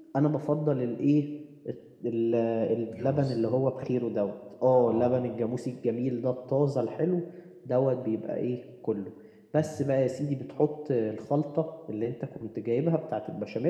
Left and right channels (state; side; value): identical; both; correlation 1.00